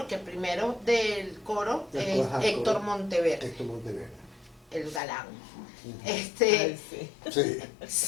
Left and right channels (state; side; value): drops out; right; at 5.0 s